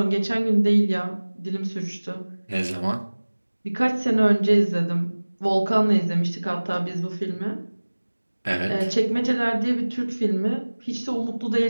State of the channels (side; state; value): both; inverted; correlation -1.00